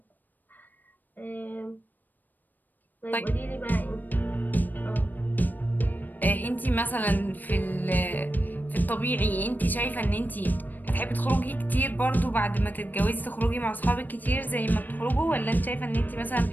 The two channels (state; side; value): late; right; 0.088 ms